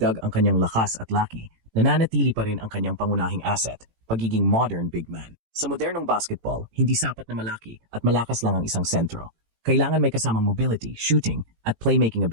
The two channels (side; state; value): left; late; 18 ms